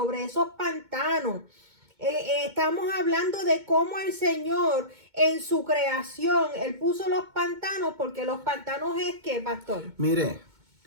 esos pantanos. Estamos hablando de cómo el Señor en su creación, Él puso los pantanos, porque los pantanos es ¿qué, pastor? Mire,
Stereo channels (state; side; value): late; left; 2.2 ms